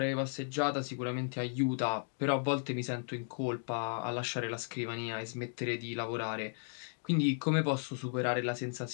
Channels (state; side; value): silent; right; digital silence